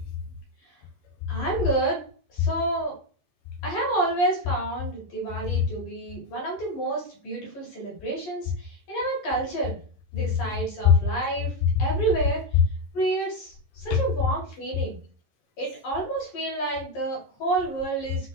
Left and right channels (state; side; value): late; right; 11 ms